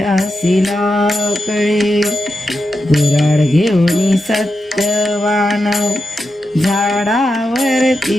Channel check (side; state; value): both; normal; correlation 0.88